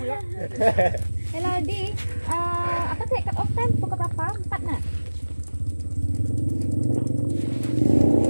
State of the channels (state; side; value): inverted; both; correlation -1.00